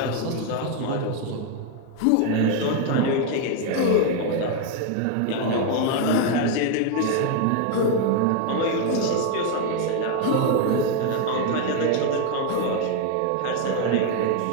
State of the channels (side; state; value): both; different; correlation 0.01